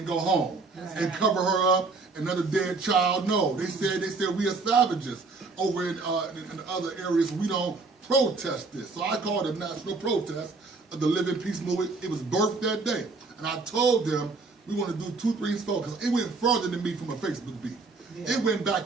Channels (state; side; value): quieter; left; 4.0 dB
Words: go home and cover her up, another dead child. No, they said we are savages over in other areas. We don't protest this. So I called it a national protest of the Living Peace Movement. It was birthed that day. And I told them we want to do 2, 3, 4 because it went further than me from a Facebook beef. Yeah. It went